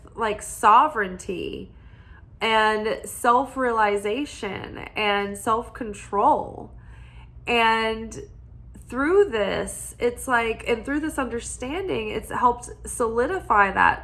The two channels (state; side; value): identical; both; correlation 1.00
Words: like sovereignty and self-realization and self-control. And through this, it's like, and through this understanding, it's helped solidify